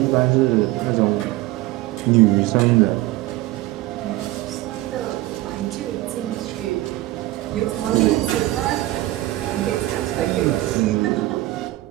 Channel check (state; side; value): quieter; left; 17.3 dB